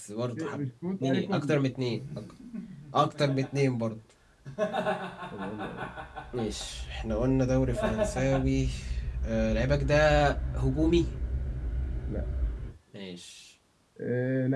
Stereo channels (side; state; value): both; identical; correlation 1.00